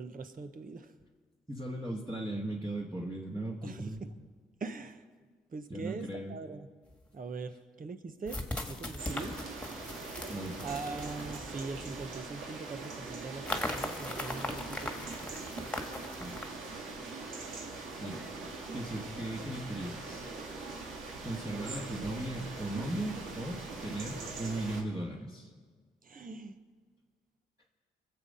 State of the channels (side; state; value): both; normal; correlation 0.70